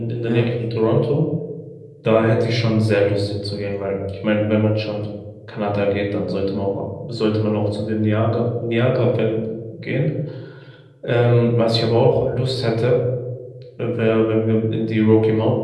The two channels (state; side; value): identical; both; correlation 1.00